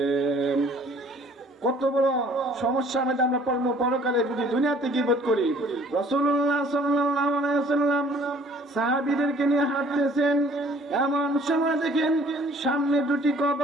কত বড় সমস্যার মধ্যে আমরা পড়বো পরকালে যদি দুনিয়াতে গীবত করি। রাসূলুল্লাহ সাল্লাল্লাহু আলাইহি ওয়াসাল্লাম সাহাবীদেরকে নিয়ে হাঁটতেছেন, এমন সময় দেখেন সামনে দুটি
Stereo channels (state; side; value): normal; both; correlation 0.55